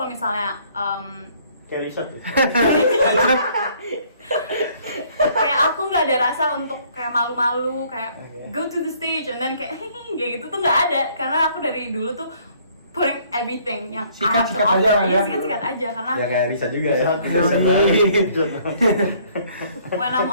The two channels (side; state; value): both; inverted; correlation -0.61